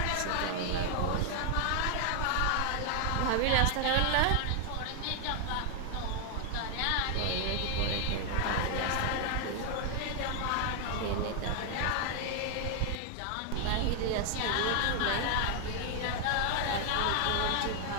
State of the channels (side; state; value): both; different; correlation 0.00